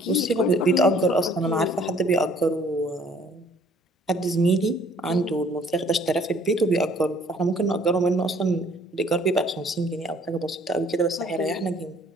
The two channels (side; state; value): both; normal; correlation 0.58